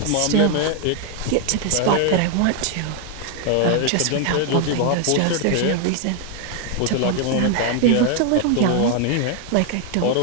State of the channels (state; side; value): different; both; correlation 0.00